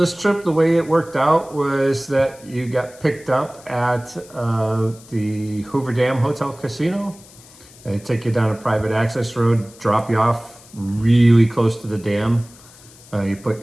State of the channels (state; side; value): noise; left; hiss, 23 dB below the sound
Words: trip, the way it worked out was that you got picked up at the Hoover Dam Hotel Casino. They take you down a private access road, drop you off really close to the dam. You